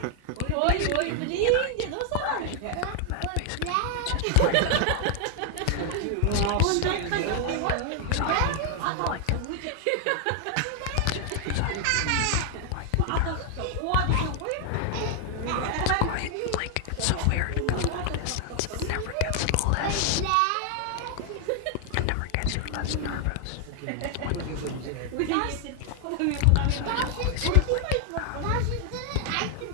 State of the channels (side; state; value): both; different; correlation 0.00